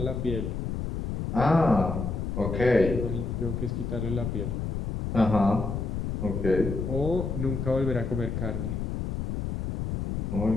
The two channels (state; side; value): noise; left; rumble, 2 dB below the sound